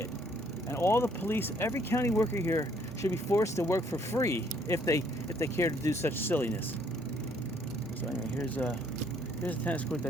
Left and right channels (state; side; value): normal; both; correlation 0.65